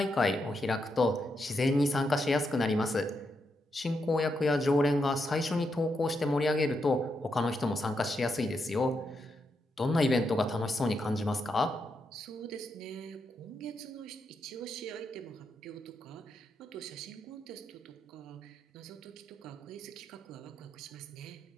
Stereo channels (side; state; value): both; normal; correlation 0.83